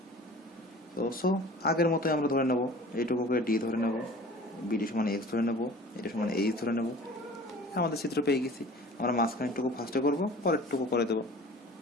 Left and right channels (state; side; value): normal; both; correlation 0.44